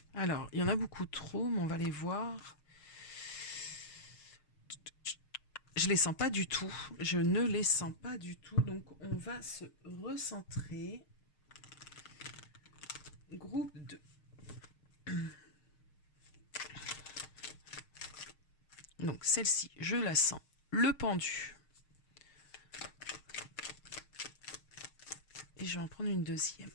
Alors, il y en a beaucoup trop, mais on va les voir. Je les sens pas du tout. Je ne les sens pas du tout. Donc, on va se recentrer. Groupe 2. Donc, celle-ci, je la sens. Le pendu. Et je vais en prendre une deuxième.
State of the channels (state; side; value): late; right; 6.5 ms